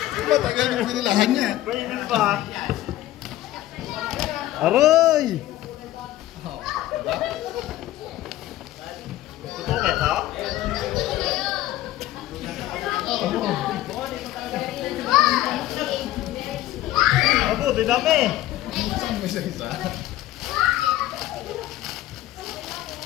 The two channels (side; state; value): right; quieter; 14.8 dB